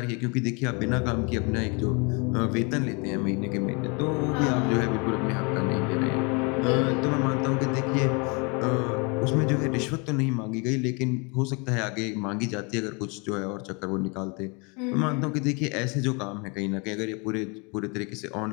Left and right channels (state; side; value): quieter; right; 31.5 dB